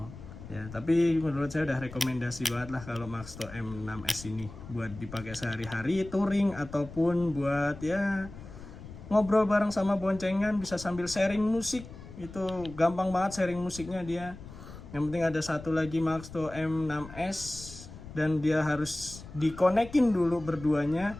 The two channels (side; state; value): left; noise; rumble, 15 dB below the sound